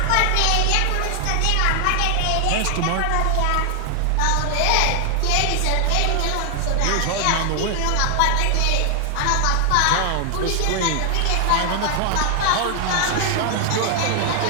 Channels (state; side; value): different; both; correlation 0.00